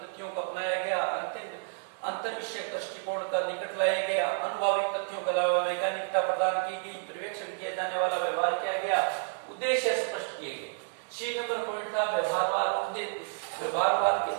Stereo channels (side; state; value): left; silent; digital silence